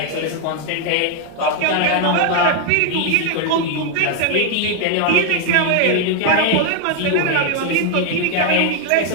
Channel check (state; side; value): different; both; correlation 0.00